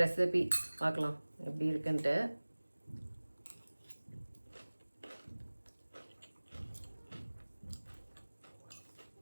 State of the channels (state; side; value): inverted; both; correlation -1.00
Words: ரெசிபி பார்க்கலாம் எப்படி இருக்குன்ட்டு.